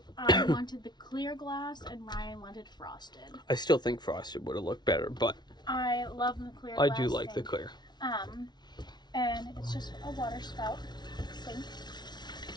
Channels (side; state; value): right; late; 0.20 ms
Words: I wanted the clear glass and Ryan wanted frosted. I still think frosted would have looked better, but I love the clear glass. I do like sink. the clear. And it's just a water spout. sink.